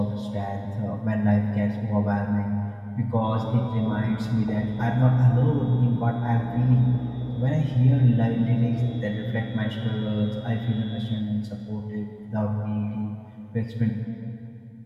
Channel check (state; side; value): identical; both; correlation 1.00